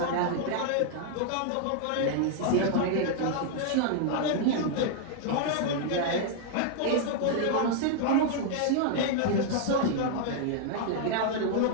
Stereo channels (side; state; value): both; different; correlation -0.01